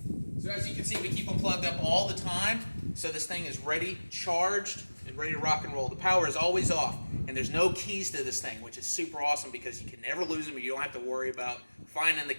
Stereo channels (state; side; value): inverted; both; correlation -1.00